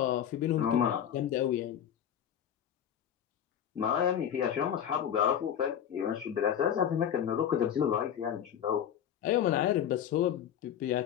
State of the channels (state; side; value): quieter; right; 9.5 dB